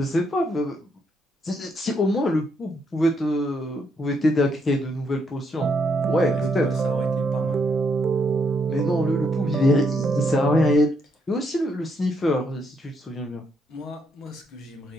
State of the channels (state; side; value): normal; both; correlation 0.75